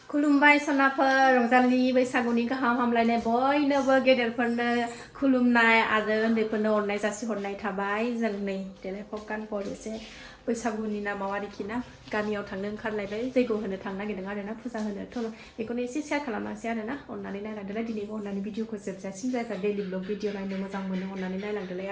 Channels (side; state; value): both; identical; correlation 1.00